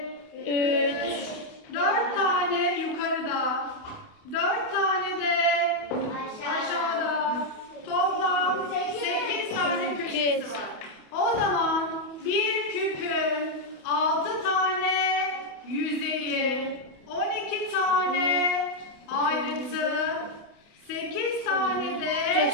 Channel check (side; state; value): right; late; 28 ms